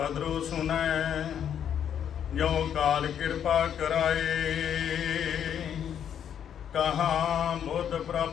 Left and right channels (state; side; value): quieter; right; 9.0 dB